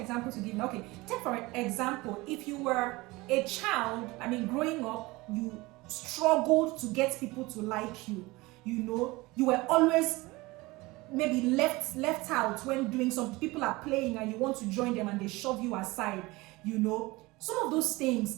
to give. Okay, take for example, if you were a child, growing up, you struggled to get people to like you. You were always maybe left out when doing something. People are playing and you want to join them and they shove you aside. Some of those things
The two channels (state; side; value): quieter; left; 21.8 dB